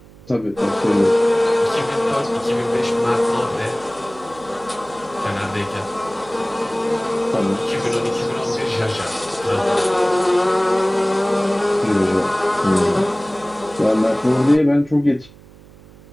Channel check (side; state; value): right; noise; hum, 23 dB below the sound